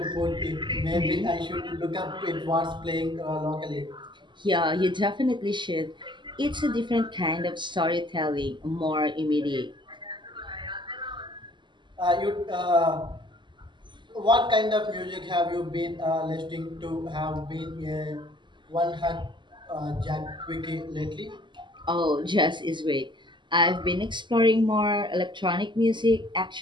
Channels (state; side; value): late; left; 0.22 ms